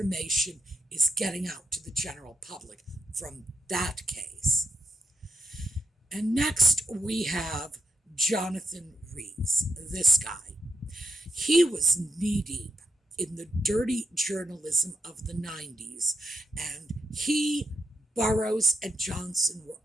is getting out to the general public from that case. And next we have Jonathan Rees, this guy. He was knee-deep in the dirty journalism of the 90s, and he, Burrows, and Johnson were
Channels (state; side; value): normal; both; correlation 0.81